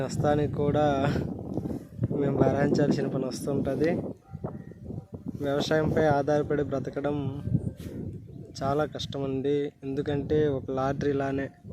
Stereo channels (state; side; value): identical; both; correlation 1.00